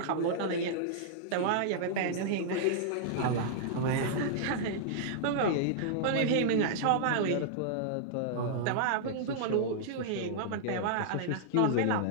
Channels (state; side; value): different; both; correlation -0.01